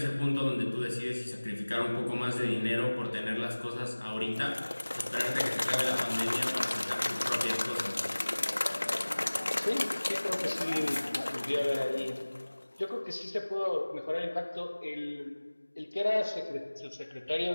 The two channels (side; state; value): both; inverted; correlation -1.00